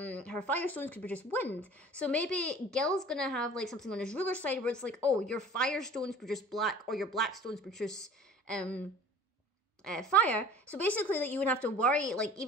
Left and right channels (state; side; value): normal; both; correlation 0.45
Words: Firestones could produce wind. So maybe Gil's gonna have, like, something on his ruler side where it's like, oh, your Firestones produce black, or your Blackstones produce, fire. So basically, like, you wouldn't have to worry, like,